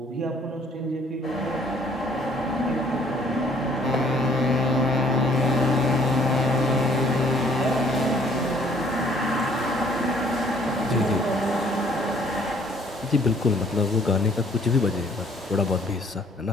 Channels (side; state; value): both; normal; correlation 0.60